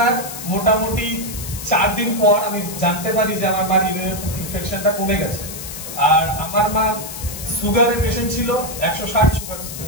মোটামুটি 4 দিন পর আমি জানতে পারি যে আমার মার ইনফেকশনটা কমে গেছে। আর আমার মা সুগারের পেশেন্ট ছিল, 160 সুগার ছিল।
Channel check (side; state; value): left; noise; hiss, 9 dB below the sound